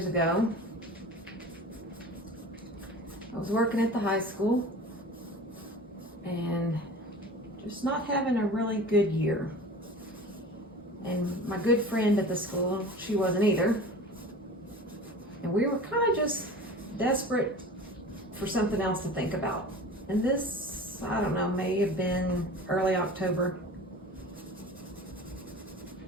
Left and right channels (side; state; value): both; normal; correlation 0.38